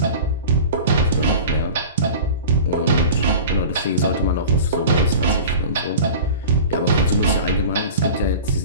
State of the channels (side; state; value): both; inverted; correlation -0.35